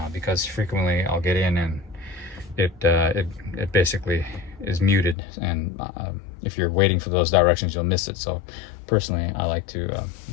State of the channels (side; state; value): right; drops out; at 5.2 s